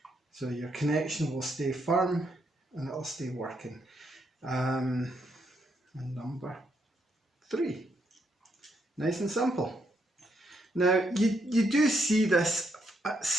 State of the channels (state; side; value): normal; both; correlation 0.77